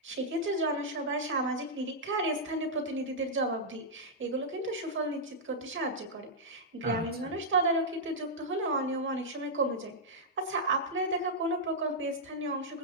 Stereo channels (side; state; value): both; normal; correlation -0.08